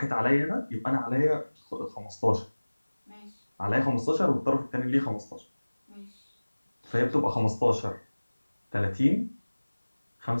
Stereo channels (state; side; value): inverted; both; correlation -1.00